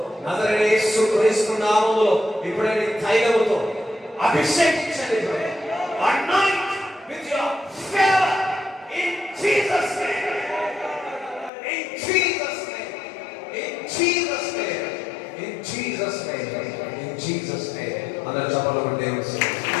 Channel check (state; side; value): drops out; right; at 11.5 s